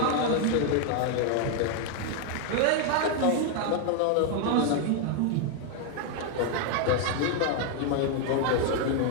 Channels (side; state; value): both; different; correlation 0.00